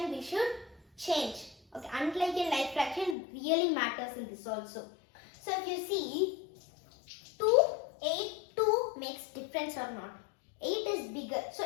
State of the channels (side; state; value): right; drops out; at 3.2 s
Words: we should change. Okay? Unlike in like fraction really matters in this also. So, if you see, 2, 8, 2 makes difference or not. 8 is bigger. So